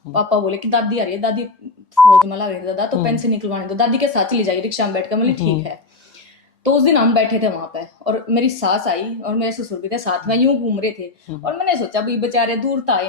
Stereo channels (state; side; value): quieter; right; 3.6 dB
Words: पापा बोले कि दादी आ रही है, दादी फौज में लग रही है दादा, तो पेन से निकलवाने दो, दादी के साथ चली जाएगी रिक्शा में बैठ कर, मतलब ठीक है। तो उस दिन हम बैठे थे वहां पे और मेरी सास आई और मेरे ससुर भी थे साथ में, यूं घूम रहे थे, और मैंने सोचा भी बेचारे दूर तो आए